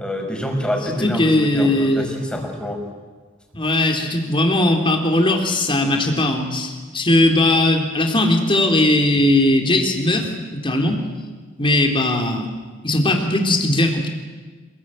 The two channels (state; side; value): normal; both; correlation 0.60